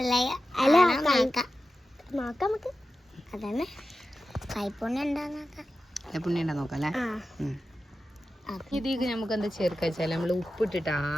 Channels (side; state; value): both; normal; correlation 0.93